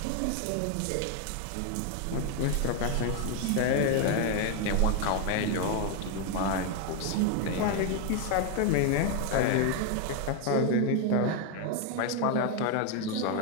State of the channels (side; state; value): both; different; correlation 0.01